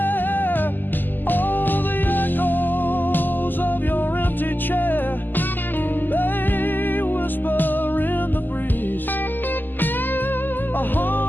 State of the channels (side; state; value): right; late; 0.089 ms